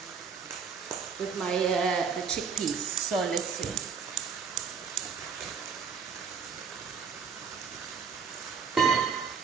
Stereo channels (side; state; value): left; quieter; 6.0 dB